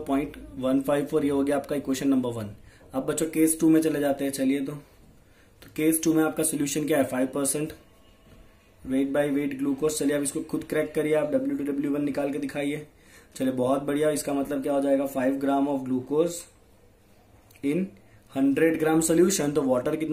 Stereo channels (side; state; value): both; identical; correlation 1.00